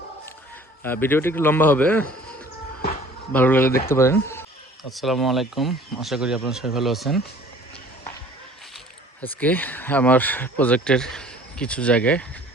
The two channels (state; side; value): normal; both; correlation 0.50